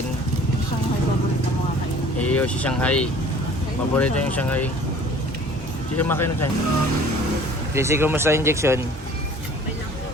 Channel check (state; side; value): normal; both; correlation 0.49